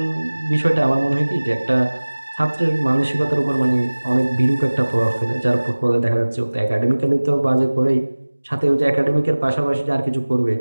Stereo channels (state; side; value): inverted; both; correlation -1.00